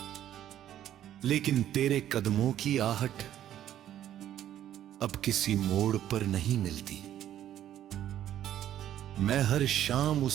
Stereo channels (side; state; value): left; quieter; 11.5 dB